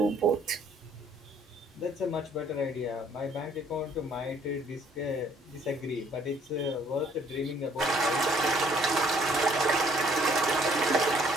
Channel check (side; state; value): both; normal; correlation 0.62